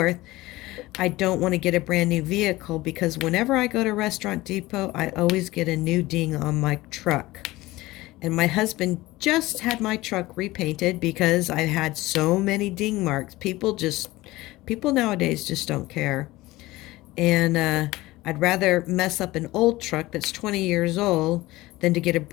I don't want to get a brand new vehicle because whenever I go to Restaurant Depot, I always get a new ding on my truck. And my husband just had my truck repainted because I had so many ding marks. People nowadays just don't care. And I'd rather mess up an old truck that's 20 years old than to get a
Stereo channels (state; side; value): quieter; right; 18.8 dB